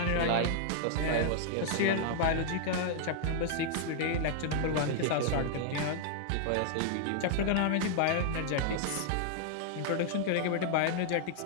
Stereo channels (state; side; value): different; both; correlation -0.01